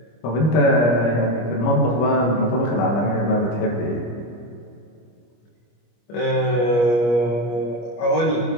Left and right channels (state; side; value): late; right; 25 ms